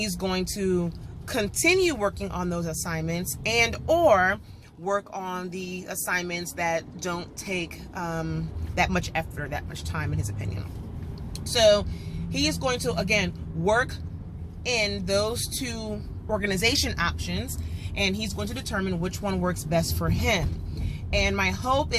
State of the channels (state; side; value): identical; both; correlation 1.00